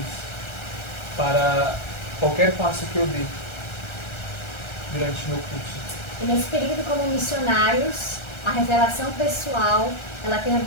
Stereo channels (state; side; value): late; right; 1.3 ms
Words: para qualquer passo que eu dê durante o meu curso. E nesse período como missionários, a revelação pessoal, ela tem